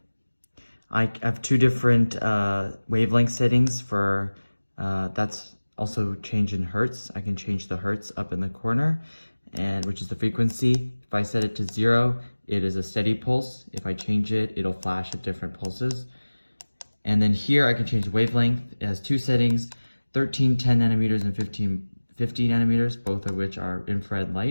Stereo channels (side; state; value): both; inverted; correlation -1.00